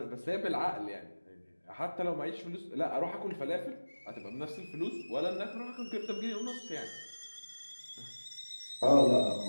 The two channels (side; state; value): both; inverted; correlation -1.00